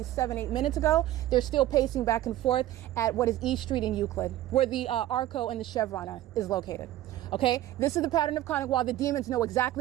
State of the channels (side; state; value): left; quieter; 14.2 dB